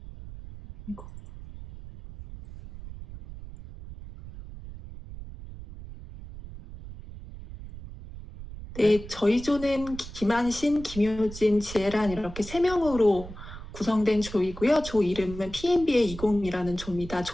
네, 저희 조는 김한신, 김효진, 지혜란 이렇게 3명으로 구성된 조이고요. 조 이름은 PMBA 20이라는 조입니다.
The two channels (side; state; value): right; noise; rumble, 13 dB below the sound